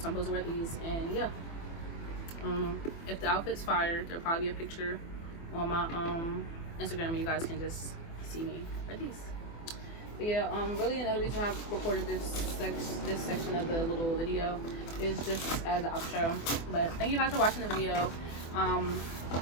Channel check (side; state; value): right; late; 24 ms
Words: so I'm supposed to wear these. And yeah, if the outfit's fire, there'll probably be a picture on my Instagram, and you guys can just see me wear these. But yeah, really another reason I've recorded this section of the little video is just as an outro. But thank you guys for watching the video. I